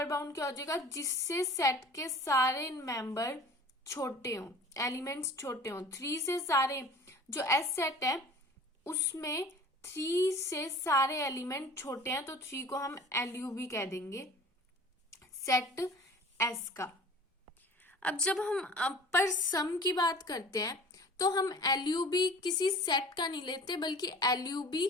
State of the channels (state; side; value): normal; both; correlation 0.44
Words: बाउंड क्या हो जाएगा, जिससे सेट के सारे मेंबर छोटे हों, एलिमेंट्स छोटे हों। 3 से सारे जो एस सेट है उसमें 3 से सारे एलिमेंट छोटे हैं, तो 3 को हम एलयूबी कह देंगे सेट एस का। अब जब हम अपर सम की बात करते हैं तो हम एलयूबी किसी सेट का नहीं लेते, बल्कि एलयूबी